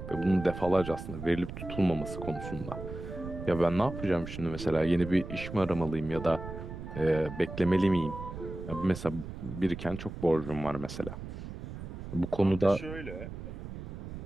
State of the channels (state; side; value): noise; right; rumble, 9 dB below the sound